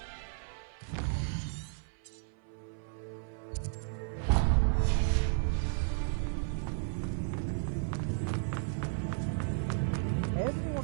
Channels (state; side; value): silent; left; 55 dB below the other